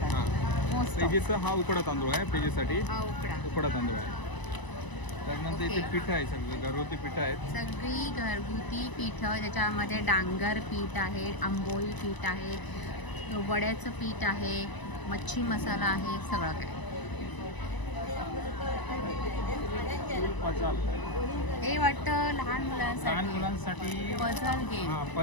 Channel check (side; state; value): right; late; 1.0 ms